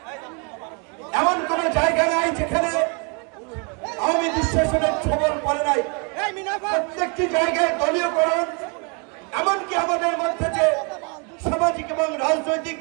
এমন কোন জায়গা নাই যেখানে আওয়ামী দুঃশাসনের খবর পড়ে নাই। প্রত্যেকটি জায়গায় দলীয়করণ, এমনকি আমাদের মধ্যে যে সামাজিক এবং রাজনৈতিক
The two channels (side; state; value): left; quieter; 34.7 dB